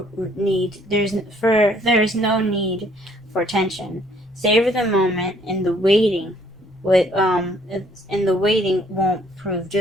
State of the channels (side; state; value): both; normal; correlation 0.63